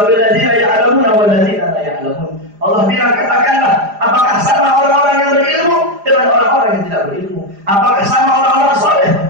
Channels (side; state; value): left; late; 4.9 ms